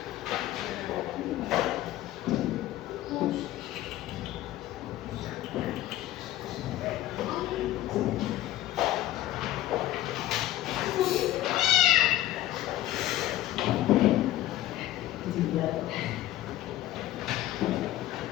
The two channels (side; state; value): right; quieter; 14.7 dB